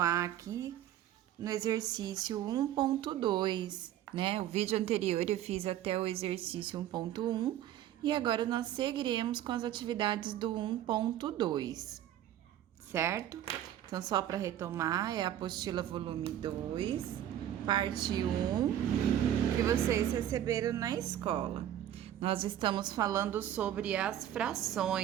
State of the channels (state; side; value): quieter; left; 11.7 dB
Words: aqui no exercício 1.2, né? O vídeo anterior eu fiz até o exercício 1.1 e agora nós seguiremos com as atividades do 1.2, certo? Então, só para retomar, é a apostila volume 2, parte 1, que vocês receberam na escola. Nós estamos falando sobre as